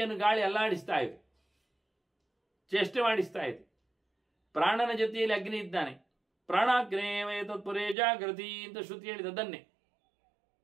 ಗಾಳಿ ಅಲ್ಲಾಡಿಸ್ತಾ ಇದೆ, ಚೇಷ್ಟೆ ಮಾಡಿಸ್ತಾ ಇದೆ. ಪ್ರಾಣನ ಜೊತೆಯಲ್ಲಿ ಅಗ್ನಿ ಇದ್ದಾನೆ. ಪ್ರಾಣಾಗ್ನೇಯ ತತ್ಪುರೇ ಜಾಗೃತಿ ಅಂತ ಶ್ರುತಿ ಹೇಳಿದದನ್ನೇ.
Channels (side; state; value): left; drops out; at 8.0 s